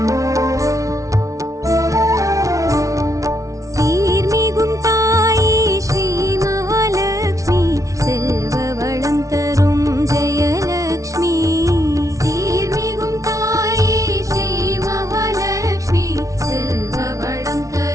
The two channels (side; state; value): left; late; 0.16 ms